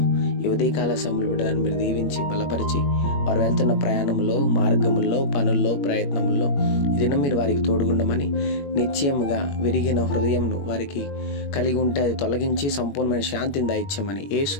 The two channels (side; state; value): right; late; 21 ms